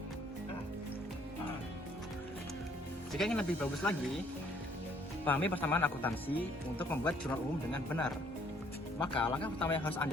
Jika ingin lebih bagus lagi, pahami persamaan akuntansi untuk membuat jurnal umum dengan benar. Maka langkah pertama yang harus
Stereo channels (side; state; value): both; normal; correlation 0.63